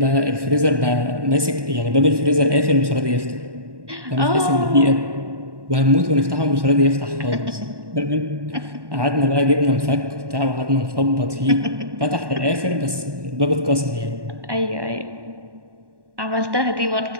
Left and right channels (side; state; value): left; late; 1.1 ms